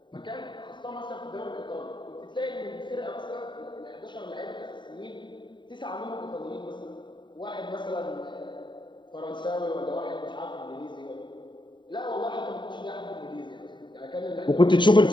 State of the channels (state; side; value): late; right; 0.23 ms